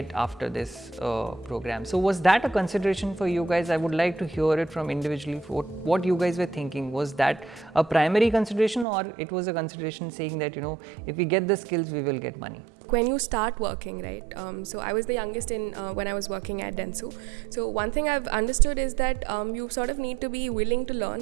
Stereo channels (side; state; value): left; drops out; at 8.8 s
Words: after this program. So was that a consideration for you guys? I would like to hear it from individually what you guys were thinking. Was that a primary consideration, or it was a consideration saying that, if we get the skills, we will get money? When you start working, right? So I was the youngest when I was working at Dentsu. So one thing I've understood is that you sort of need to be willing to